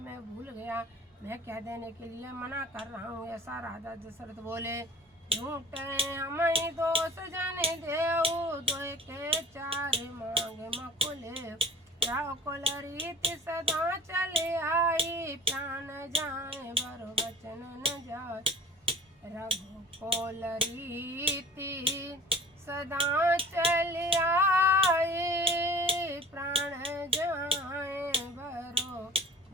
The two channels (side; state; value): both; normal; correlation 0.48